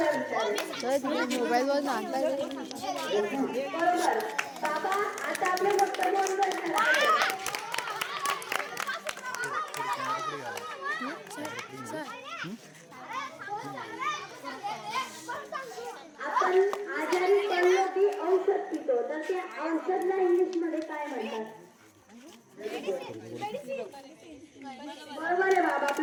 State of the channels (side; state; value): both; identical; correlation 1.00